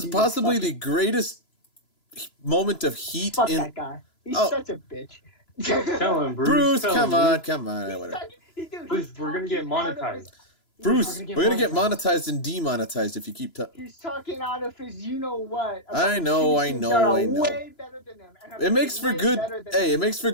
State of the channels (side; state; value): right; late; 3.0 ms